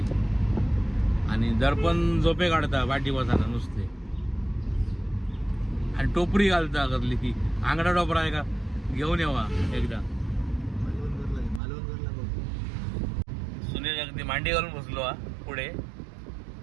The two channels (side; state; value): left; drops out; at 11.6 s